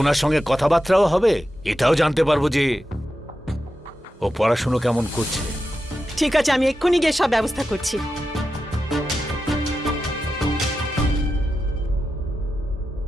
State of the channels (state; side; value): normal; both; correlation 0.90